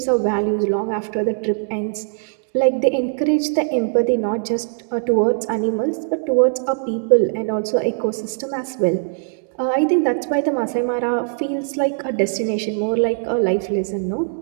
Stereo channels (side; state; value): left; silent; digital silence